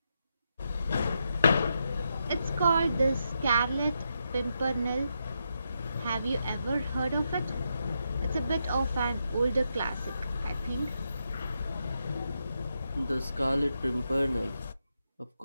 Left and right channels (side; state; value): both; inverted; correlation -0.83